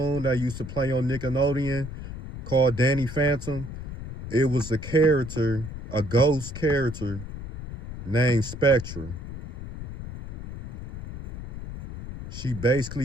that used to play on Nickelodeon called Danny Phantom, it was a character, a ghost character named Spectra. She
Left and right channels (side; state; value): left; noise; rumble, 10 dB below the sound